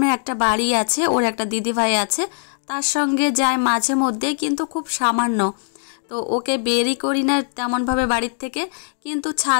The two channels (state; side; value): silent; right; digital silence